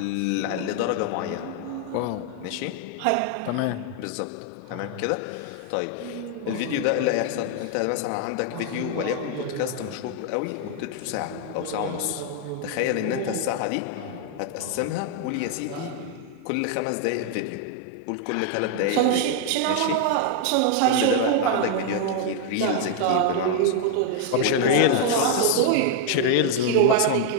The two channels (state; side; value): different; both; correlation 0.00